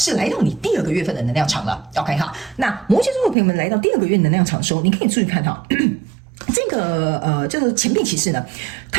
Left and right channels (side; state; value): left; drops out; at 3.4 s